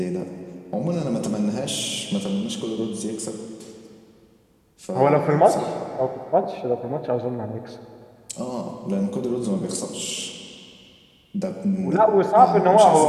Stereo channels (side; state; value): both; identical; correlation 1.00